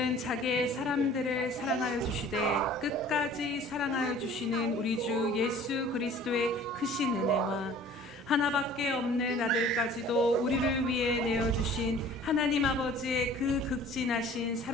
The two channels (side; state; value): both; normal; correlation 0.49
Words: 자기의 사람들을 사랑하여 주시되 끝까지 사랑하여 주시는 우리 주 예수 그리스도의 크신 은혜와 하나밖에 없는 아들까지도 우리를 위해 내어주신 하나님 아버지의 그 극진하신